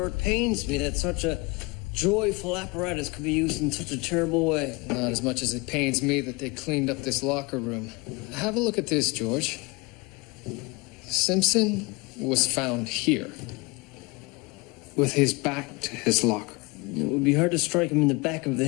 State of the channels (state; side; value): quieter; right; 26.0 dB